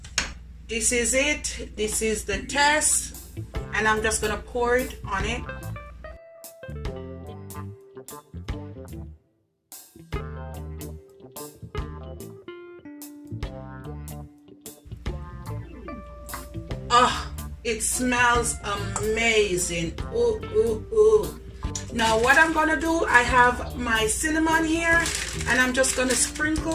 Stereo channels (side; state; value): both; identical; correlation 1.00